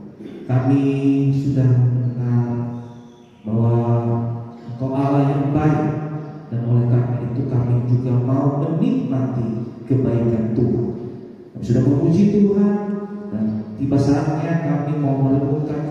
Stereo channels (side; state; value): both; identical; correlation 1.00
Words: Kami sudah mengenal bahwa Engkau Allah yang baik, dan oleh karena itu kami juga mau menikmati kebaikan Tuhan. Kami sudah memuji Tuhan, dan tiba saatnya kami mau